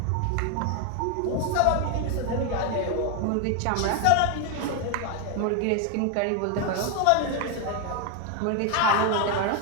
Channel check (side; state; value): both; different; correlation 0.01